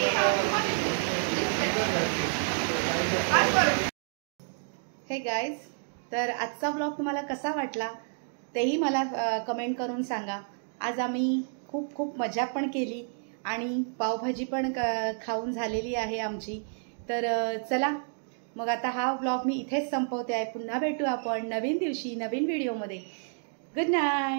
हे गाईज, तर आजचा व्लॉग तुम्हाला कसा वाटला तेही मला कमेंट करून सांगा. आज आम्ही खूप खूप मजा पण केली आणि पावभाजी पण खाऊन झालेली आहे आमची. तर चला मग आता हा व्लॉग मी इथेच संपवते आहे. पुन्हा भेटू आपण नवीन दिवशी नवीन व्हिडिओमध्ये. गुड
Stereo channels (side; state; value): left; silent; 58 dB below the other